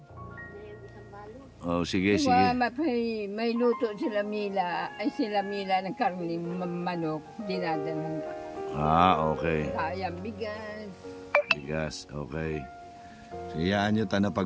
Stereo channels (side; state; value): both; identical; correlation 1.00